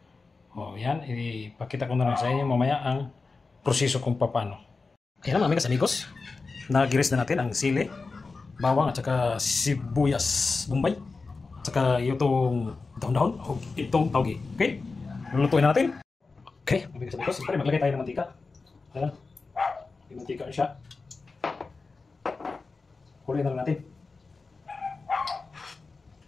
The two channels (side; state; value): right; quieter; 4.1 dB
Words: O, yan, ipakita ko na lang sa inyo mamaya ang proseso kung paano. Ayan mga amigas amigos, nagiris na natin ang sili, bawang, at saka sibuyas bombay, at saka itong daon-daon, o itong tauge. Okay? Lulutuin na natin. Okay, mabigas na ito. Siyempre, maglagay tayo ng mantika. Ayan. May mantika na siya. Kuloy na lang natin.